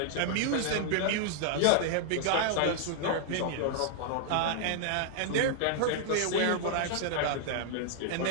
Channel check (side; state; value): both; different; correlation -0.01